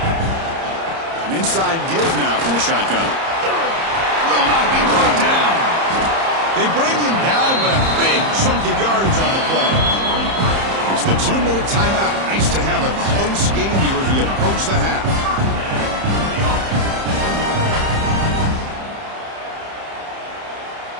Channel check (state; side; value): late; left; 30 ms